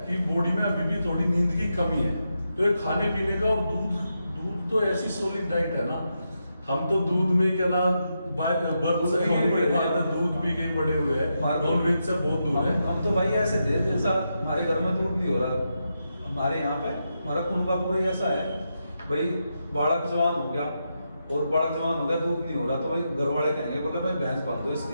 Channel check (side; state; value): both; inverted; correlation -0.85